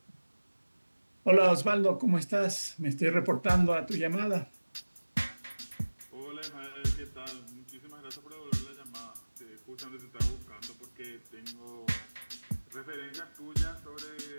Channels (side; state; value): both; inverted; correlation -1.00